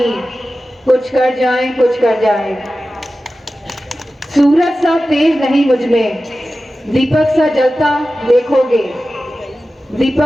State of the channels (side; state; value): both; normal; correlation 0.94